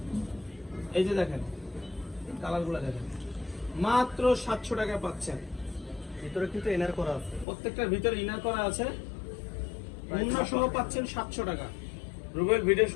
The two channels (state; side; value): drops out; right; at 7.5 s